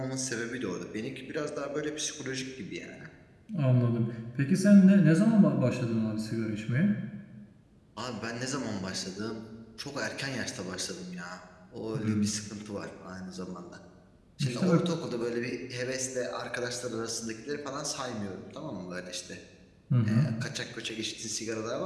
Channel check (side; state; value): both; identical; correlation 1.00